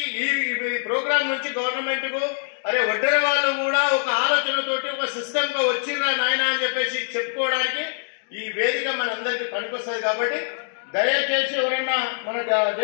ఈ ప్రోగ్రామ్ నుంచి గవర్నమెంట్ కు అరే వడ్డెర వాళ్ళు కూడా ఒక ఆలోచనతోటి ఒక సిస్టమ్ గా వచ్చిర్రా నాయన అని చెప్పేసి చెప్పుకోవడానికి ఈ వేదిక మనందరికి పనికొస్తుంది. కాబట్టి దయచేసి ఎవరన్నా మన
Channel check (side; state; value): right; silent; digital silence